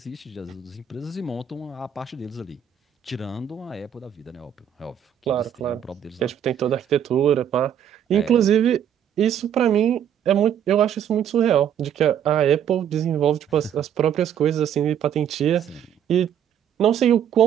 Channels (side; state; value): left; quieter; 9.3 dB